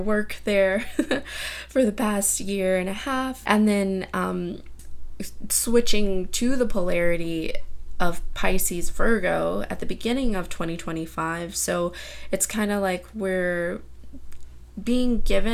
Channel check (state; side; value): identical; both; correlation 1.00